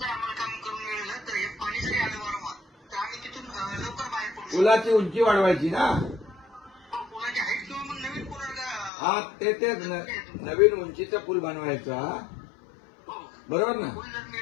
आम्हाला काम करून मिळालं तर हे पाणी जरी आलं वारंवार तर आम्ही तिथून लवकर बाहेर पडू शकतो. पुलाची उंची वाढवायची ना. पुलाची हाईट किंवा मग नवीन पूल. हा ते नवीन उंचीचा पूल बनवायचा. बरोबर ना. पूल जर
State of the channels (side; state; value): right; drops out; at 8.9 s